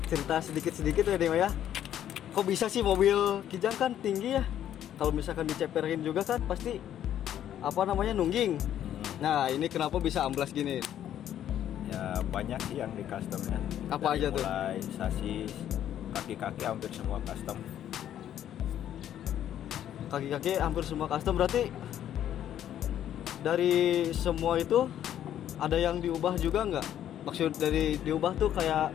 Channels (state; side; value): quieter; right; 10.9 dB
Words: cerita sedikit-sedikit ya Dik ya. Kok bisa sih mobil Kijang kan tinggi ya? Kalau misalkan diceperin juga kan pasti apa namanya, nungging. Nah ini kenapa bisa amblas gini? Ya banyak sih yang di customnya. Apa aja tuh? Mulai sasis, kaki-kaki hampir semua custom. Kaki-kaki hampir semua custom, berarti dari semua itu ada yang diubah juga nggak? Maksud dari diubah tuh kayak,